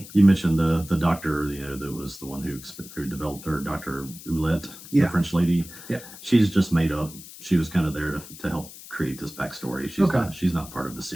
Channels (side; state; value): left; noise; hiss, 16 dB below the sound